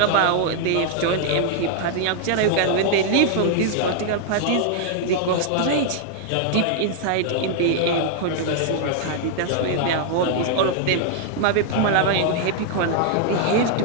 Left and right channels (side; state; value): both; different; correlation 0.00